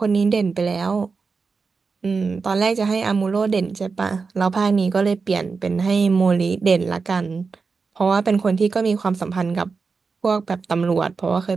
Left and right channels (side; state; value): left; quieter; 4.7 dB